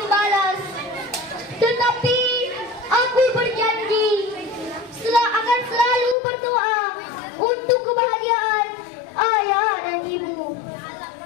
Tetapi aku berjanji akan selalu berdoa untuk kebahagiaan ayah dan ibu.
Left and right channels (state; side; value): drops out; right; at 6.2 s